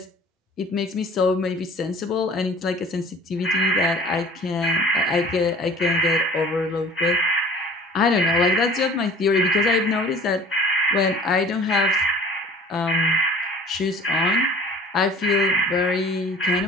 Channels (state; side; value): normal; both; correlation 0.47